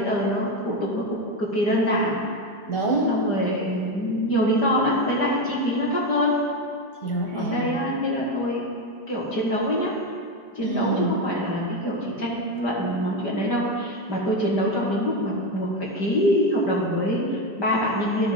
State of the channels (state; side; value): late; right; 5.0 ms